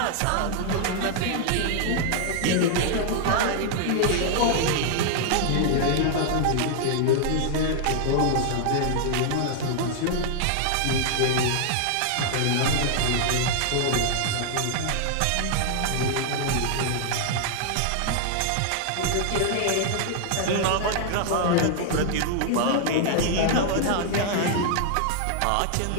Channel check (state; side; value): different; both; correlation 0.00